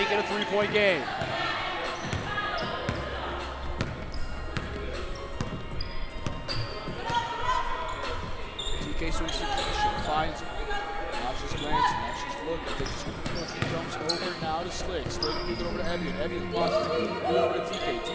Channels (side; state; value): both; identical; correlation 1.00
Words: it a 3-point game. TK swings to Keisha, finds it. Now she's glancing, now she's looking. She jumps over now to Slick. Slick gives it over to Evian. Evian pauses, gives it over to TK.